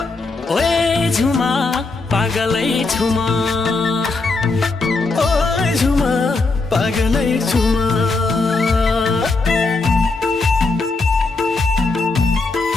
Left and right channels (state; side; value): quieter; right; 3.7 dB